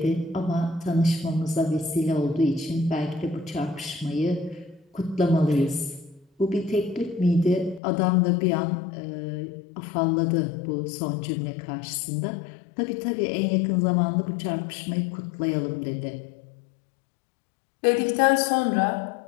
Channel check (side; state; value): right; drops out; at 7.8 s